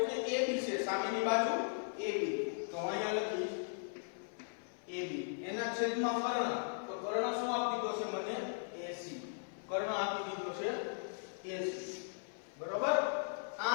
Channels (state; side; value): silent; right; 52 dB below the other